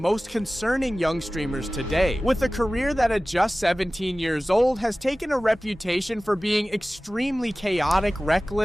concerning young streamers today. With a career that at just 17 years old has taken a reputation for being extremely chaotic,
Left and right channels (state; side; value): normal; both; correlation 0.97